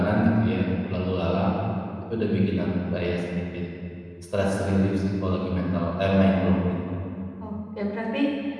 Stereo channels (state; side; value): identical; both; correlation 1.00